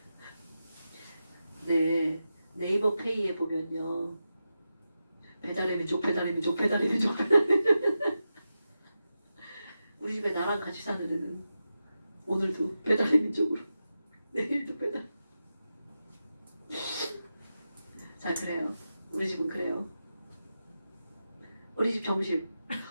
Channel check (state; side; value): inverted; both; correlation -0.90